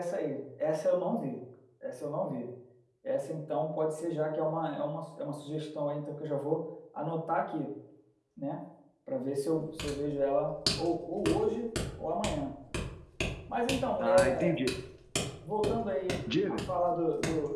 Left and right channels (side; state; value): both; identical; correlation 1.00